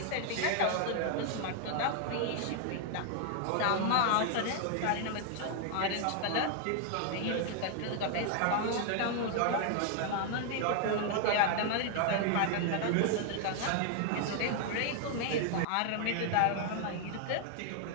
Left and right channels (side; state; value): both; different; correlation 0.00